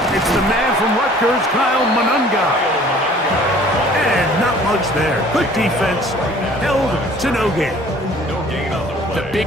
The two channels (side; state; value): both; normal; correlation 0.52